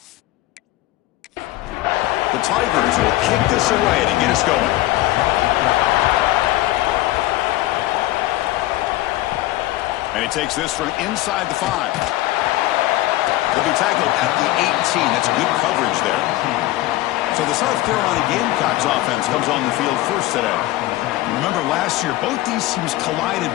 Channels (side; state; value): right; quieter; 16.9 dB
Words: The Tigers will kick this away to get us going. And he takes this from inside the 5. He'll be tackled at the 18. That's good coverage there. So the South Carolina Gamecocks offense comes on the field first today. Remember last year, both these teams collided